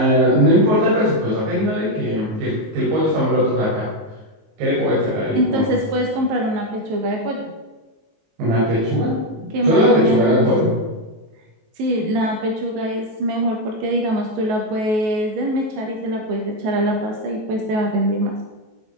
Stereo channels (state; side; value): late; left; 19 ms